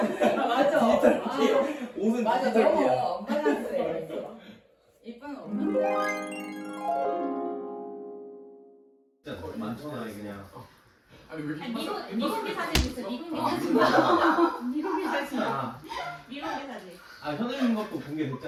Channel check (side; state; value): both; identical; correlation 1.00